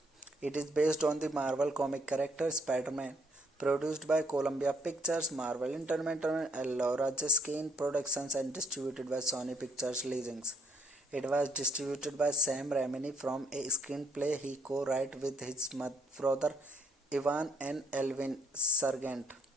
It is based on the Marvel comic character Spider-Man, produced by Columbia Pictures, Marvel Entertainment, and Laura Jiskin Productions, and distributed by Sony Pictures Licensing. It was distributed by Sam Raimi from a screenplay he co-wrote with his brother Ivan and Elvin Sargent.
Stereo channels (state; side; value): normal; both; correlation 0.68